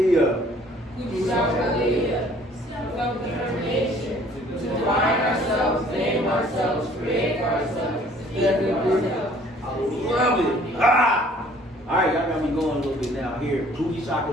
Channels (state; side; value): normal; both; correlation 0.56